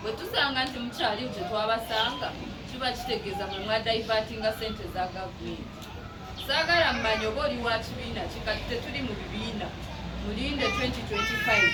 Bwe tusanga nti mukyali gye twabasanga, kiba kitegeeza mwe mwadaivatinga sente za gavumenti. Saagala mmanya oba oli wa kibiina kikati tetuli mu bibiina, mulinde 2025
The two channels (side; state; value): both; identical; correlation 1.00